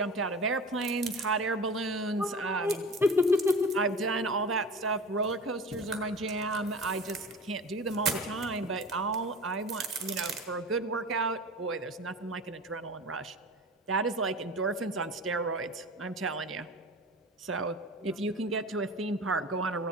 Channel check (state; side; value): normal; both; correlation 0.35